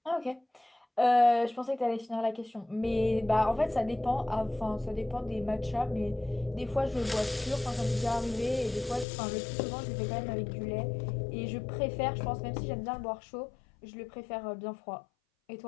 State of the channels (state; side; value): drops out; right; at 9.1 s